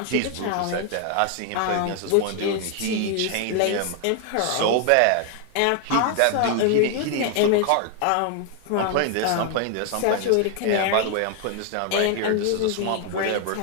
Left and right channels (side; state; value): both; different; correlation 0.00